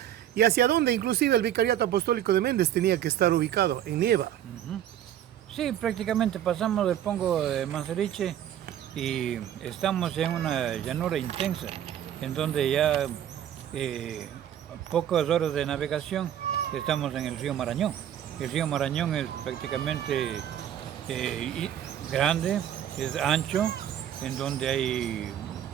y hacia donde inclusive el Vicariato Apostólico de Méndez tenía que estar ubicado, en Nieva. Sí, prácticamente pasamos del pongo de Manseriche y estamos en una llanura intensa, en donde ya pocas horas de navegación estamos en el río Marañón. El río Marañón es prácticamente grande, es ancho, en donde hay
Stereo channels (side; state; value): left; quieter; 10.7 dB